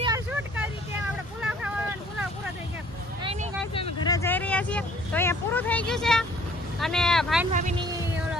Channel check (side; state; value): both; normal; correlation 0.57